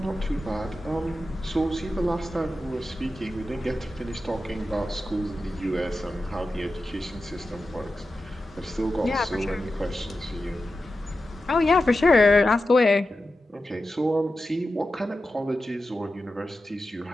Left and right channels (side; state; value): both; normal; correlation 0.92